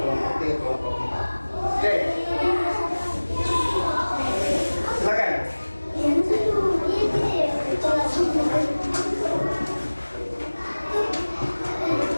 3, kelompok 4. Oke. Silakan.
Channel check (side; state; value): both; inverted; correlation -1.00